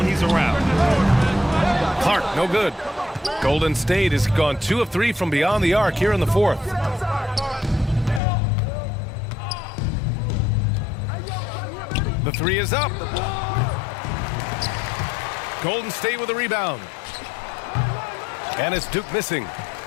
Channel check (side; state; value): right; drops out; at 8.2 s